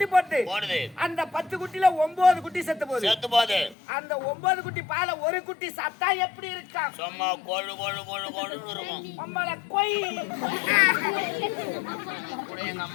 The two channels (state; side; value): drops out; right; at 3.8 s